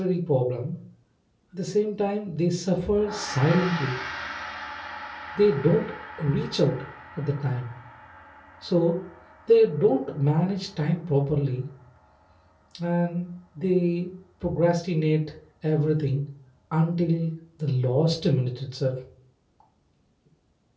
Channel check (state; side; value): identical; both; correlation 1.00